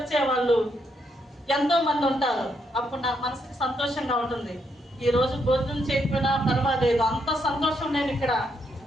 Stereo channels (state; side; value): normal; both; correlation 0.77